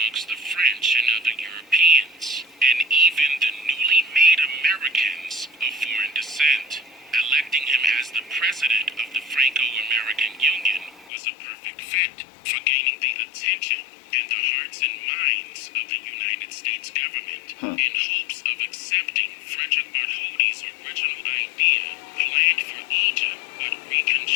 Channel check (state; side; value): drops out; right; at 11.1 s